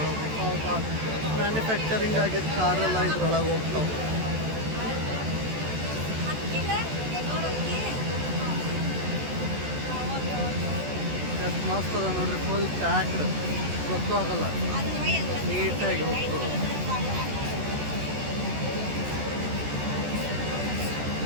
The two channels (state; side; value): late; left; 14 ms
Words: ಮ್ಯಾನುಫ್ಯಾಕ್ಚರಿಂಗ್ ಆಗಿದ್ದ ಕಾರೆಲ್ಲ ಇದ್ರೊಳಗೆ ಹೋಗ್ತಾವೆ. ಎಷ್ಟು ಮಸ್ತ್ ಅದ ನೋಡ್ರಿ, ಫುಲ್ ಪ್ಯಾಕ್ಡ್, ಗೊತ್ತೂ ಆಗಲ್ಲ, ನೀಟಾಗಿ ಹೋಗ್ತದೆ.